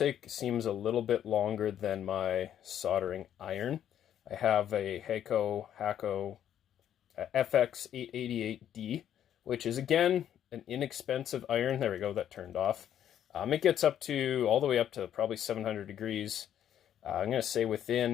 seems a little bit longer than my soldering iron. I have a Hakko FR-301 which is again an inexpensive iron. There we go, that turned off. It gets up to all the way up to probably 700 degrees. I'm going to say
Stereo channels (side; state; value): right; quieter; 10.3 dB